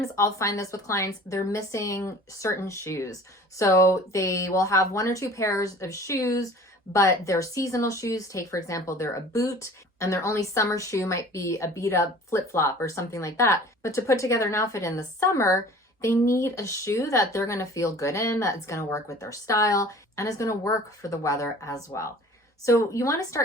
I'll find this with clients, they're missing certain shoes. So they will have one or two pairs of shoes, but they're seasonal shoes. Take, for example, they're a boot, and their only summer shoe might be a beat up flip-flop or something like that. But to put together an outfit in the summer, they need a shoe that they're going to feel good in, that's going to work with their style, and is going to work for the weather as well. So you want to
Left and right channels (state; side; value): normal; both; correlation 0.46